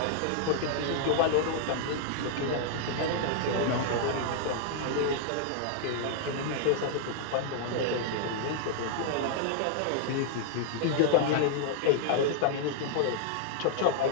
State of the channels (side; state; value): both; different; correlation -0.01